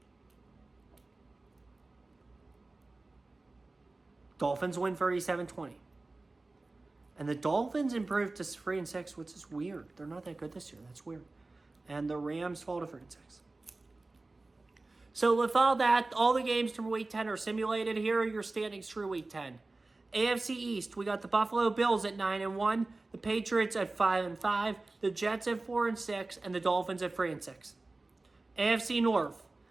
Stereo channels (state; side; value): quieter; left; 3.2 dB